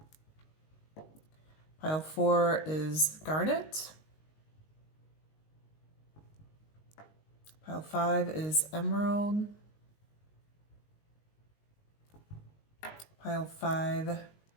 Pile 4 is garnet. Pile 5 is emerald. Pile 5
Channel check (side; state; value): right; late; 19 ms